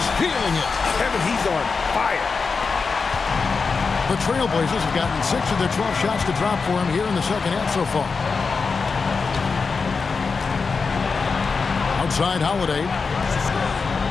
feeling it. Kevin, he's on fire. The Trailblazers have gotten 6 of their 12 shots to drop for him here in the second half so far. Outside Holiday.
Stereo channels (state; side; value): quieter; right; 4.8 dB